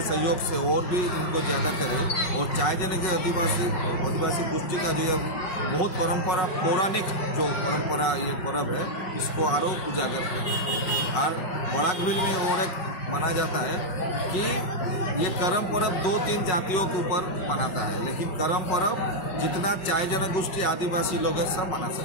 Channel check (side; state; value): right; late; 5.4 ms